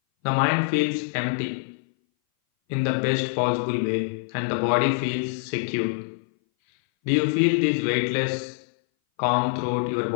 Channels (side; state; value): right; silent; 59 dB below the other